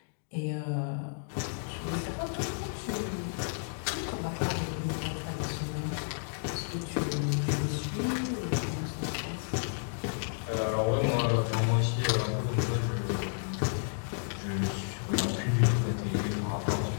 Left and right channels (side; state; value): right; silent; digital silence